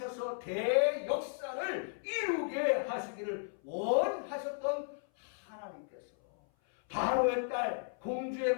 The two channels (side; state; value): right; silent; 55 dB below the other